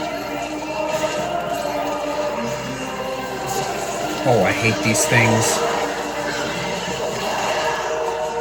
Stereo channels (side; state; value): both; identical; correlation 1.00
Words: Oh, I hate these things.